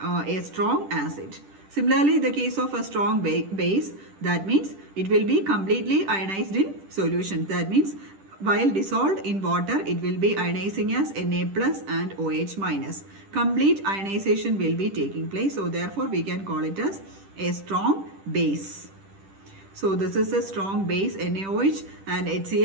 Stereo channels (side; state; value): left; late; 10 ms